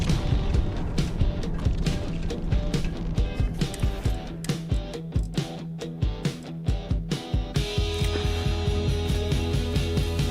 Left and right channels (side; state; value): both; identical; correlation 1.00